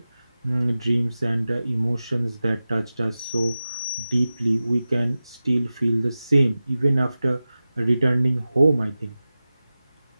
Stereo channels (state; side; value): inverted; both; correlation -0.95